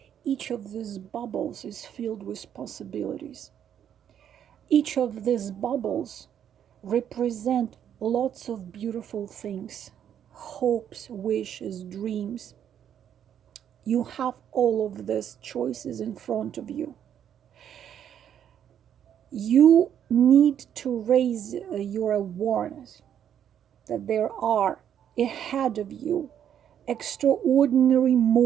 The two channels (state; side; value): quieter; left; 9.4 dB